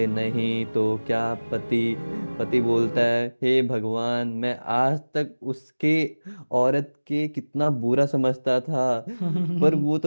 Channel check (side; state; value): both; inverted; correlation -1.00